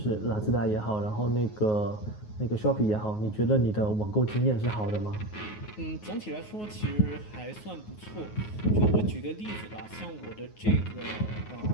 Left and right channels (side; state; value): right; late; 9.4 ms